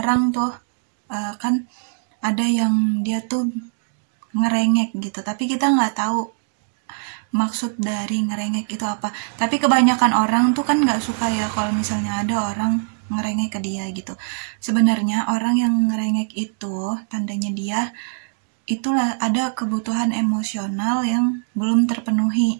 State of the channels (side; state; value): left; silent; digital silence